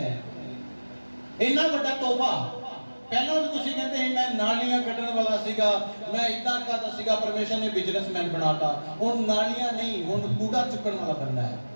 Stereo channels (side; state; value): both; inverted; correlation -1.00